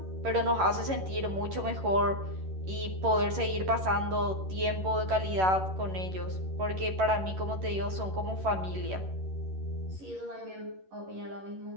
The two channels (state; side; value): late; left; 11 ms